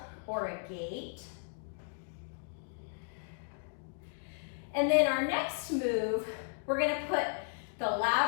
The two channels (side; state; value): right; silent; 54 dB below the other